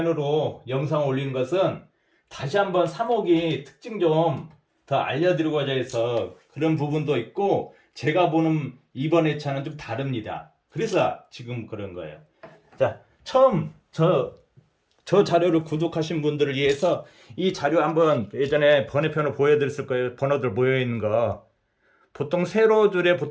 영상 올린 것은 다시 한번 3호기 특징 좀 더 알려드리고자 해서 그런 부분도 있고, 제가 보는 이번 회차는 좀 다릅니다. 그래서 지금 그런 거예요. 자, 처음 저 자료를 구독하신 분들을 위해서 이 자료 한번 예전에 번외편으로 보여드렸을 거예요. 번호들 모여있는 거. 보통 세로줄에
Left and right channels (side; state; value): both; identical; correlation 1.00